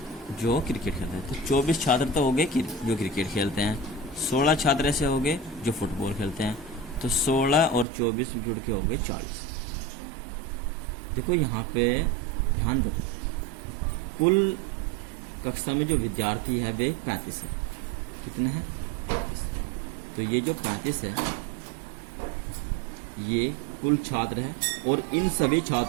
जो क्रिकेट खेलते हैं। तो 24 छात्र तो हो गए जो क्रिकेट खेलते हैं, 16 छात्र ऐसे हो गए जो फुटबॉल खेलते हैं। तो 16 और 24 जुड़ के हो गए 40। देखो यहाँ पे ध्यान दो, कुल कक्षा में जो विद्यार्थी है वे 35 है। कितने हैं? 35। तो ये जो 35 है ये कुल छात्र है, और इन सभी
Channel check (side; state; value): left; drops out; at 7.9 s